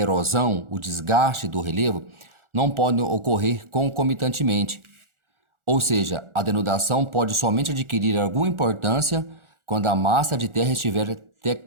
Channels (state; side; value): late; left; 1.4 ms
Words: o desgaste do relevo, não podem ocorrer concomitantemente. Ou seja, a denudação pode somente adquirir alguma importância quando a massa de terra estiver